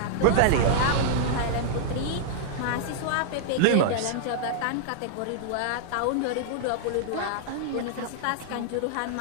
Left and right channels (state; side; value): different; both; correlation -0.01